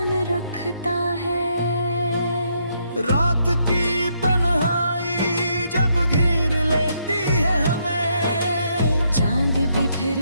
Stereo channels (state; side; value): inverted; both; correlation -0.74